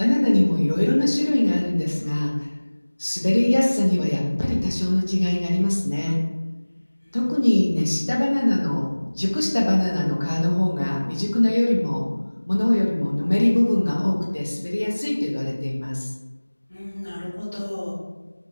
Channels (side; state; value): both; inverted; correlation -1.00